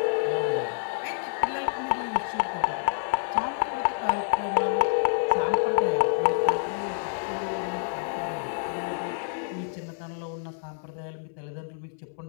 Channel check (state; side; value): silent; right; 59 dB below the other